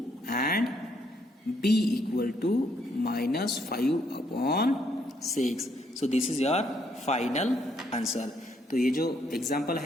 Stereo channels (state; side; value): normal; both; correlation 0.72